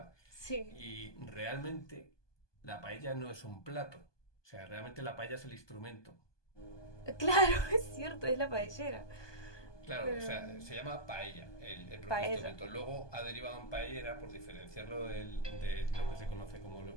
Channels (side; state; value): right; late; 1.2 ms